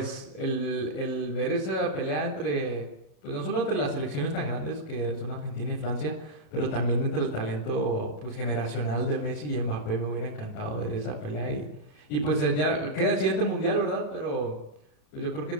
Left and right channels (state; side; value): late; right; 37 ms